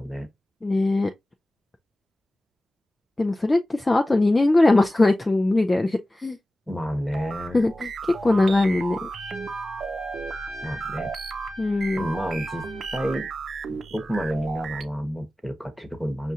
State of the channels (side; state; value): both; normal; correlation 0.96